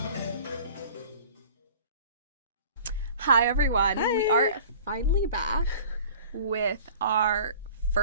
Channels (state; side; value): inverted; both; correlation -0.45